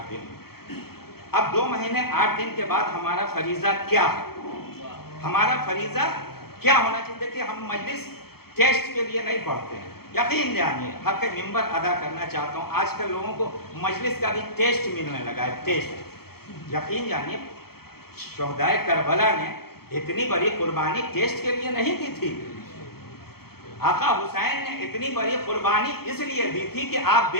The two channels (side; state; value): right; late; 0.95 ms